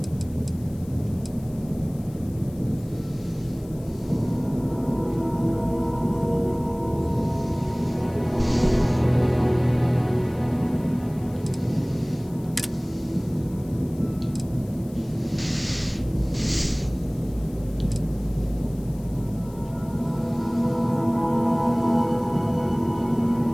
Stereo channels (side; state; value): left; noise; hiss, 25 dB below the sound